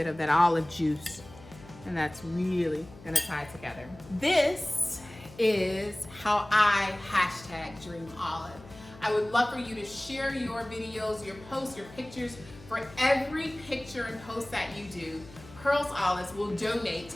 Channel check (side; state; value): left; noise; hum, 19 dB below the sound